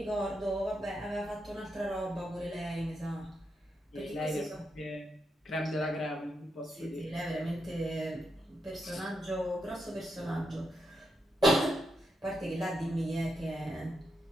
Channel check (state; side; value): normal; both; correlation 0.83